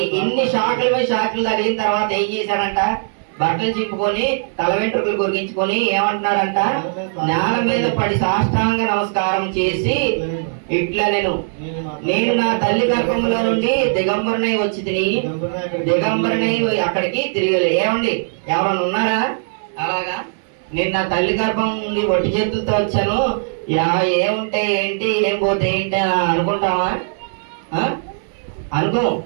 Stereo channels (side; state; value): left; silent; digital silence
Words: ఇన్ని షాకుల మీద షాకులు తగిలిన తర్వాత ఏం చేశాడంట, బట్టలు చింపుకొని తల వెంట్రుకలు గొరిగించుకొని ఏమంటున్నాడంట, నేల మీద పడి సాష్టాంగ నమస్కారం చేసి ఇట్లా నేను నా తల్లి గర్భంలో నుండి దిగంబరునై వచ్చి దిగంబరునై అక్కడికి తిరిగి. ఏమండి ఎవరన్నా ఉన్నారా అలాగా? నేను నా తల్లి గర్భం నుండి ఒట్టి చేతులతో వచ్చాను, ఏముంటే ఏంటి ఏం పోతే ఏంటి అని అనుకుంటామా? అనుకో.